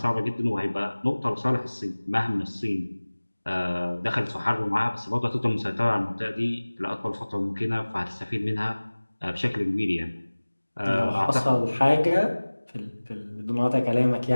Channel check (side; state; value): both; inverted; correlation -1.00